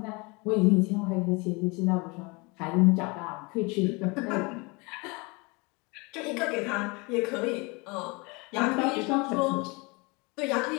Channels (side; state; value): right; quieter; 27.9 dB